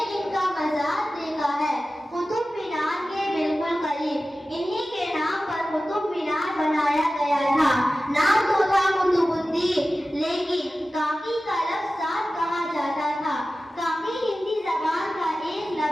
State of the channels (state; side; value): normal; both; correlation 0.95